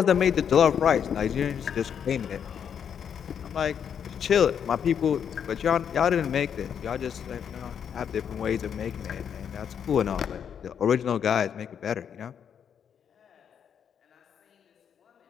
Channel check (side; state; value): right; quieter; 8.0 dB